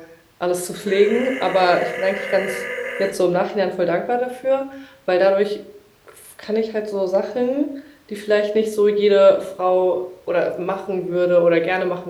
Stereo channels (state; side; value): identical; both; correlation 1.00